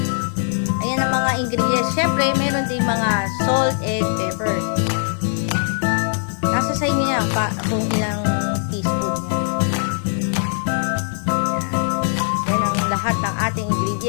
ayan ang mga ingredients. Siyempre, meron din mga salt and pepper. Nasa sa inyo yan kung ilang teaspoon yan. Yan ang lahat ng ating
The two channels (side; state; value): right; silent; digital silence